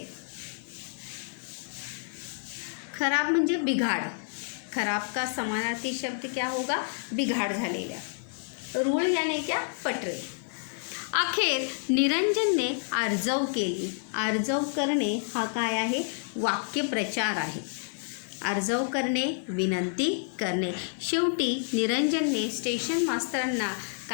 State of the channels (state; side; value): silent; right; digital silence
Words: खराब म्हणजे बिघाड. खराब का समानार्थी शब्द क्या होगा? बिघाड झालेल्या. रूळ याने क्या? पटरे. अखेर निरंजनने आर्जव केली. आर्जव करणे हा काय आहे? वाक्यप्रचार आहे. आर्जव करणे, विनंती करणे. शेवटी निरंजनने स्टेशन मास्तरांना